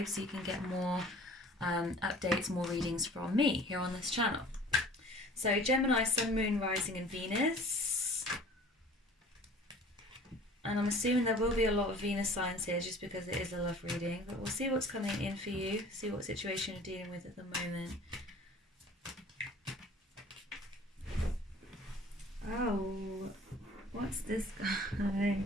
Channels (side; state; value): both; normal; correlation 0.47